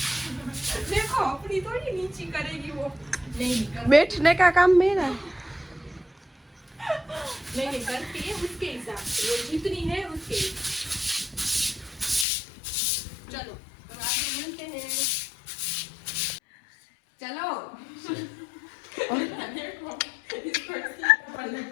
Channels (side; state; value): right; drops out; at 12.2 s